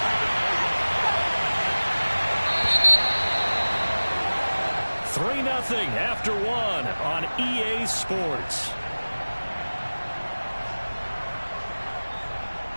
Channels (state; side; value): inverted; both; correlation -1.00